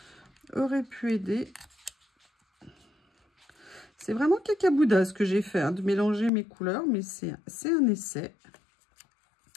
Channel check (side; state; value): right; drops out; at 6.3 s